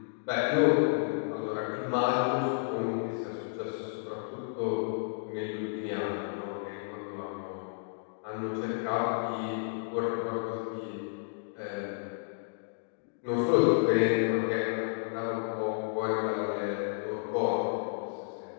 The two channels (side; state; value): right; silent; digital silence